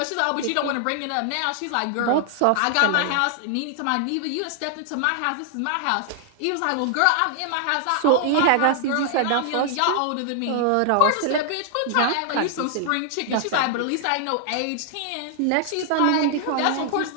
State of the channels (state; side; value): different; both; correlation 0.00